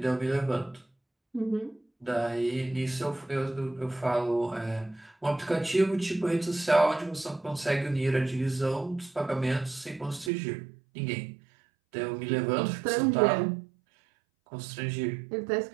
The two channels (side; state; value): left; drops out; at 10.3 s